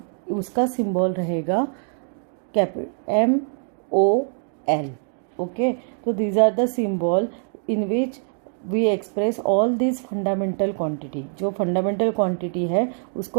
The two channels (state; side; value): silent; left; 63 dB below the other